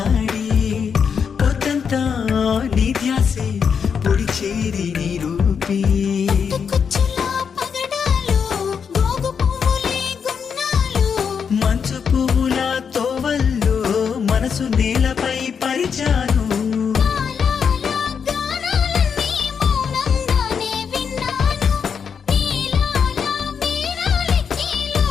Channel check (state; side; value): quieter; right; 6.7 dB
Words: పొద్దంతా నీ ధ్యాసే పొడి చేరి నీ రూపీ మంచు పువ్వుల తోవల్లో మనసు నేలపై పరిచాను